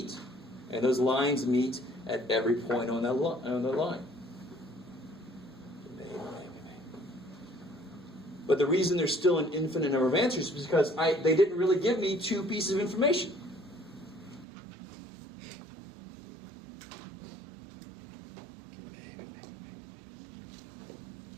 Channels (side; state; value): left; drops out; at 14.5 s